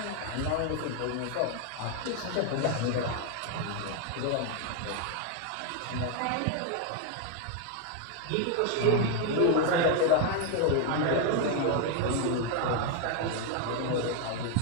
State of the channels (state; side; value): different; both; correlation 0.00